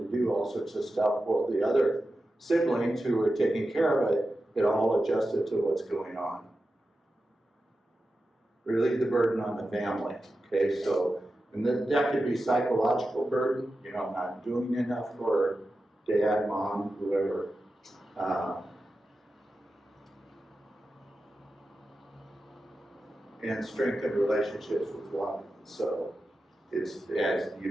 do all sorts of stuff. Well, the other siblings who were taking care of it all adjusted to what's going on. Relieve the burden on the family. Okay, so and that could be psychological burden. I'm not doing enough for dad, mom, whoever. And strengthen relationships with one. So it's, as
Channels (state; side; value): normal; both; correlation 0.92